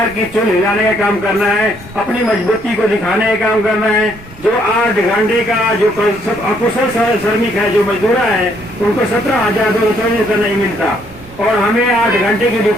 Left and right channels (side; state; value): right; noise; rumble, 20 dB below the sound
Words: की चुन हिलाने का काम करना है, अपनी मजबूती को दिखाने का काम करना है। जो 8 घंटे का जो अकुशल श्रमिक है, जो मजदूरा है, उनको 17,234 नहीं मिलता और हमें 8 घंटे की